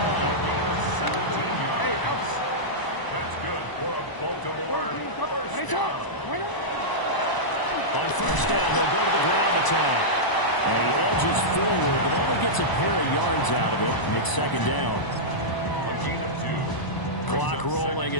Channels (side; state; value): right; late; 1.0 ms